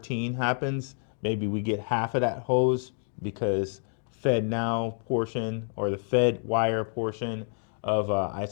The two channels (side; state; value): right; silent; 58 dB below the other